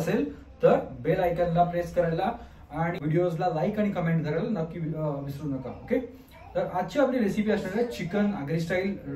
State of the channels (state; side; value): identical; both; correlation 1.00